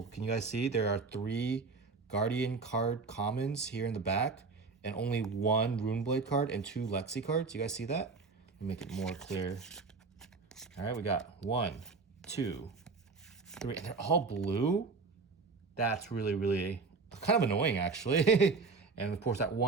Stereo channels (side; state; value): left; quieter; 4.4 dB